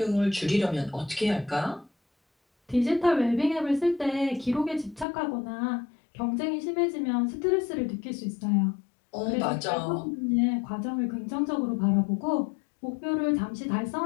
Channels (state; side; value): drops out; right; at 5.1 s